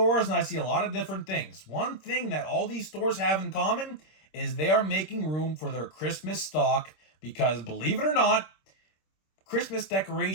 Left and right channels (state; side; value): late; right; 26 ms